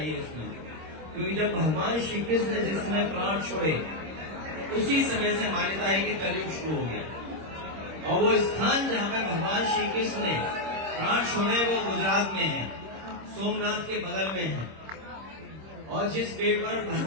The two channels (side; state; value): left; late; 26 ms